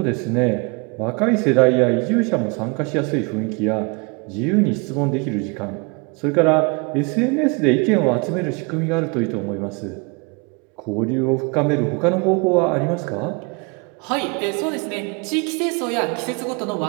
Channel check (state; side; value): quieter; left; 30.9 dB